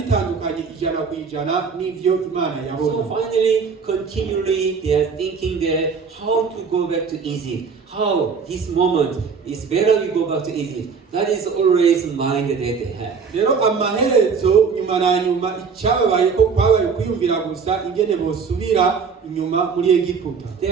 bitandukanye 100% n'ivyo Imana So yabona. finally, continually, they are thinking that how to go back to Egypt. How this moment is better we go back to Egypt. That is always mind that they have. Rero amaherezo nyuma na nyuma icyababaye ko kwabaye kwiyumvira gusa ingene bosubira inyuma muri Egiputa.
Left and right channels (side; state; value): left; quieter; 5.6 dB